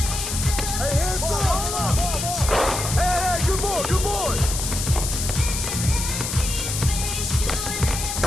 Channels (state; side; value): noise; left; hiss, 4 dB below the sound